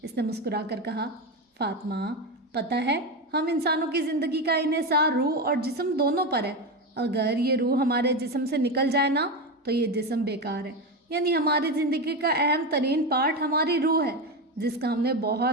اس نے مسکرا کر کہا، فاطمہ پتہ ہے ہم انسانوں کی زندگی کا انحصار روح اور جسم دونوں پر ہے۔ اگر یہ روح ہمارے جسم سے نکل جائے نا تو یہ جسم بیکار ہے۔ یعنی ہماری زندگی کا اہم ترین پارٹ ہماری روح ہے، جس کا ہم نے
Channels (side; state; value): both; normal; correlation 0.16